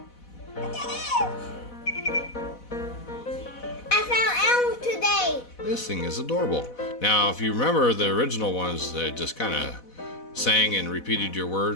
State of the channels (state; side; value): late; right; 4.1 ms